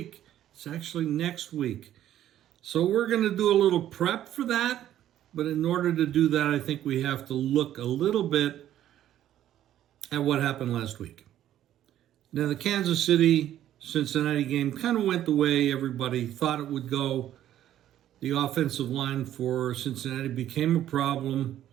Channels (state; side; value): quieter; left; 12.0 dB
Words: It's actually next week. So we're going to do a little prep for that. But in order to do that, I think we have to look a little bit at what happened last week. Now, the Kansas City-Cincinnati game kind of went the way everybody thought it would go. The offensive line for Cincinnati became a problem,